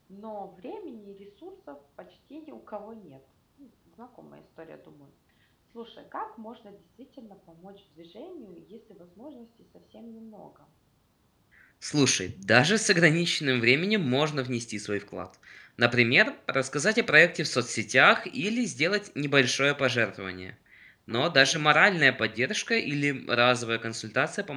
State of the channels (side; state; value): both; identical; correlation 1.00